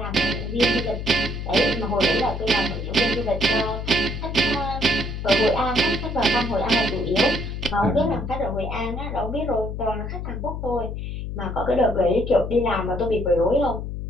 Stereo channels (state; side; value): noise; left; hum, 6 dB below the sound